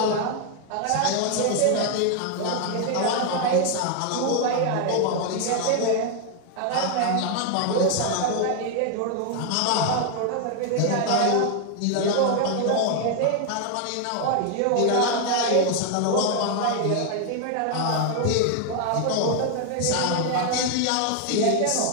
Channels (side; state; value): both; different; correlation 0.00